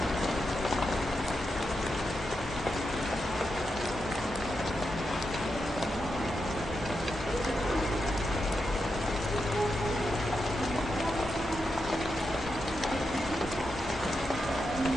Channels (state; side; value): normal; both; correlation 0.86